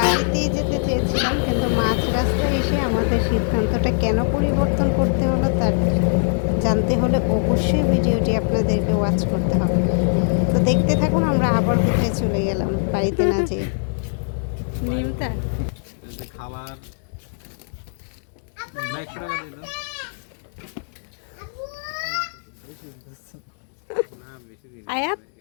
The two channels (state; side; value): silent; right; digital silence